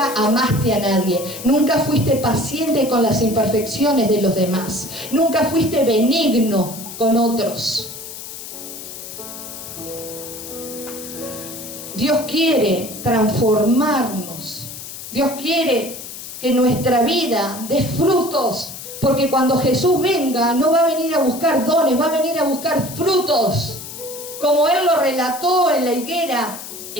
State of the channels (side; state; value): left; noise; hiss, 11 dB below the sound